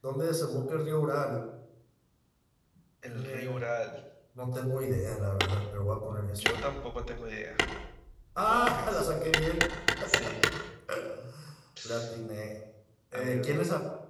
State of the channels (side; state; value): both; identical; correlation 1.00